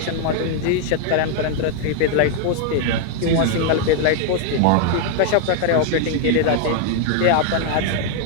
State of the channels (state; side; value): different; both; correlation 0.00